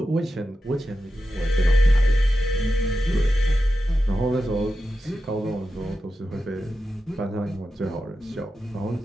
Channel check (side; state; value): both; normal; correlation 0.91